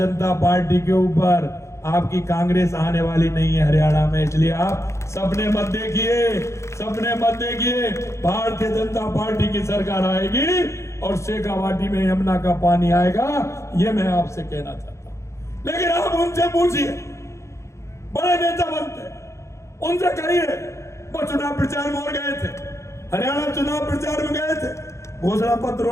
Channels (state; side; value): late; right; 0.14 ms